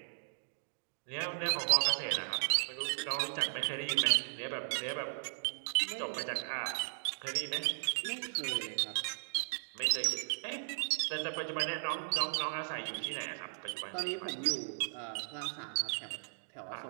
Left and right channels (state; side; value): silent; left; digital silence